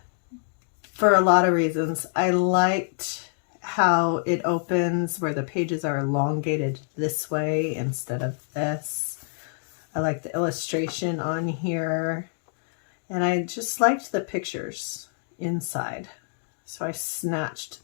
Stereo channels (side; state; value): right; silent; digital silence